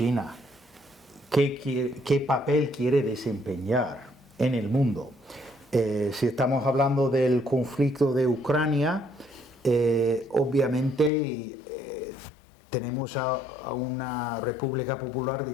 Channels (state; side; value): drops out; right; at 11.1 s